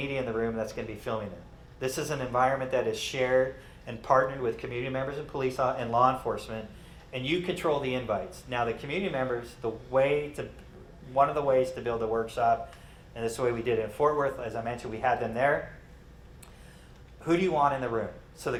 in the room that's going to be filming them. This is an environment that is shared and partnered with community members and police and law enforcement, and you control the invites. Now the community members, one of the ways to build a workshop, and this is the way we did it in Fort Worth, as I mentioned, we had them there. Who do you want in the room? So the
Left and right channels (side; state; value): both; identical; correlation 1.00